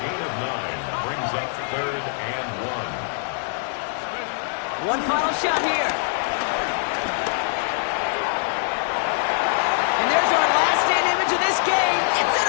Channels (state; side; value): silent; right; digital silence